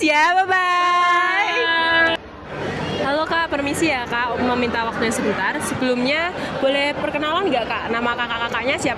ya, bye-bye. Halo Kak, permisi ya Kak, meminta waktunya sebentar. Sebelumnya boleh perkenalan nggak Kak? Nama kakak-kakaknya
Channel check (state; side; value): identical; both; correlation 1.00